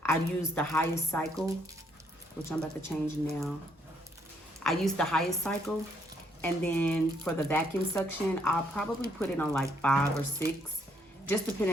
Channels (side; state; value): both; normal; correlation 0.71